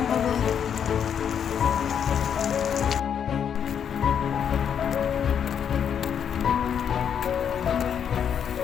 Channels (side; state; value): right; quieter; 8.2 dB